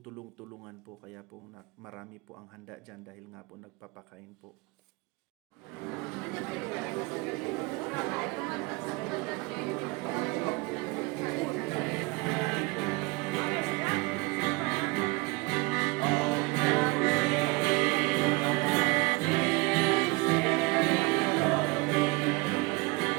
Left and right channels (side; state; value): left; quieter; 25.6 dB